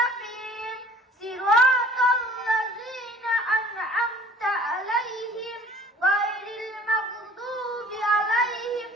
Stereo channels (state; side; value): normal; both; correlation 0.51